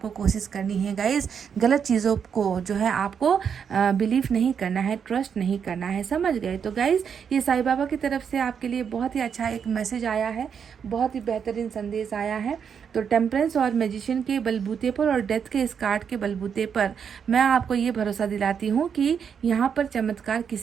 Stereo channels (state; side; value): quieter; left; 7.2 dB